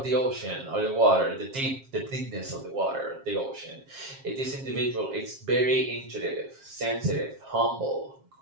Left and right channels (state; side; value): late; left; 7.4 ms